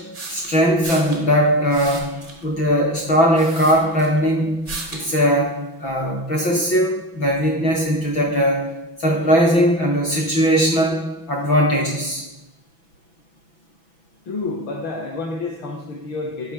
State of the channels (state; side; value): late; right; 6.0 ms